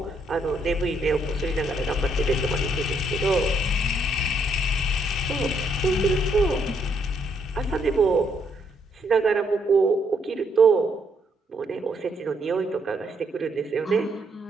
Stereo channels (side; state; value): both; normal; correlation 0.72